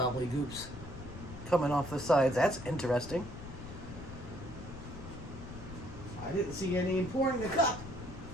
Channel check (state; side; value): noise; left; rumble, 12 dB below the sound